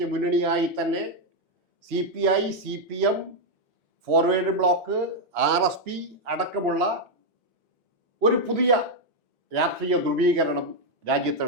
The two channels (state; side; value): normal; both; correlation 0.01